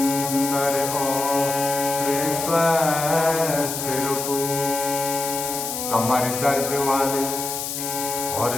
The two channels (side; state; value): left; noise; hiss, 4 dB below the sound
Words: और स्वस्थ रखो। कमर दर्द वाले